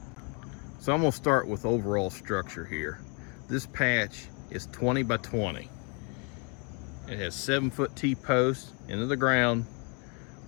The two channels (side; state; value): right; quieter; 35.0 dB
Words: So I'm gonna start with overall structure here. This patch is 20 by 20. It has 7-foot T-posts into the ground